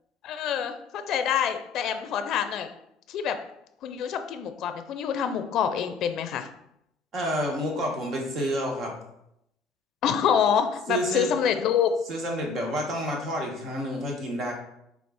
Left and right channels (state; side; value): quieter; right; 5.1 dB